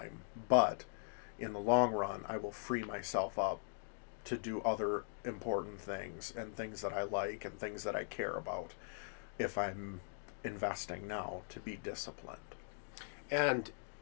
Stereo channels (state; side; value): silent; right; digital silence